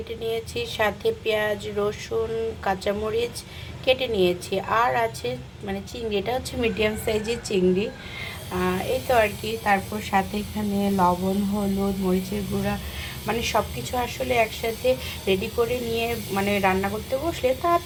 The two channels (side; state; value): both; identical; correlation 1.00